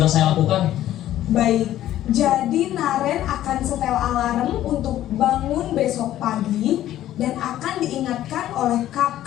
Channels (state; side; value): quieter; right; 13.0 dB